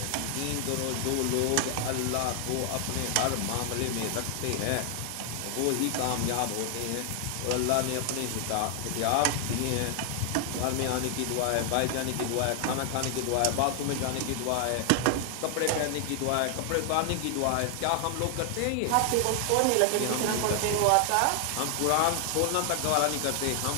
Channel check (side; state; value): both; different; correlation 0.00